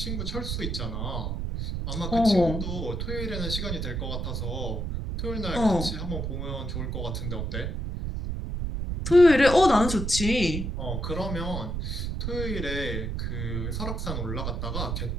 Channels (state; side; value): noise; right; rumble, 3 dB below the sound